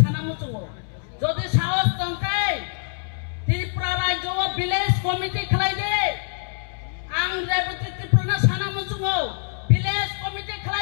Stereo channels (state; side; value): silent; right; 62 dB below the other